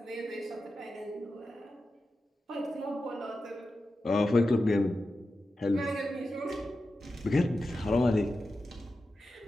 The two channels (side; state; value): both; normal; correlation 0.91